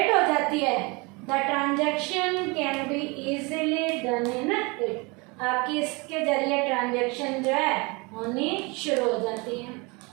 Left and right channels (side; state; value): left; quieter; 27.7 dB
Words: हो जाती है, the transaction can be easily done in it, आपकी इसके जरिए ट्रांजैक्शन जो है होनी शुरू हो जाती है।